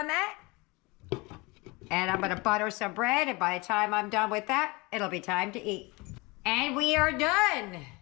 that. And I'm going to butter some bread, and by the time I'm done with that, it'll be time to eat. And we are done.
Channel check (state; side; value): quieter; right; 25.4 dB